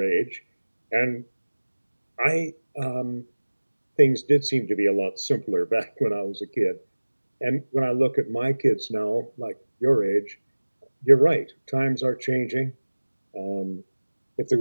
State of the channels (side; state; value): both; inverted; correlation -1.00